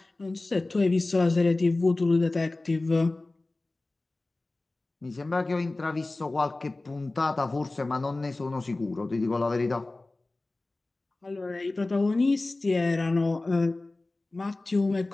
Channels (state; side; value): quieter; right; 3.0 dB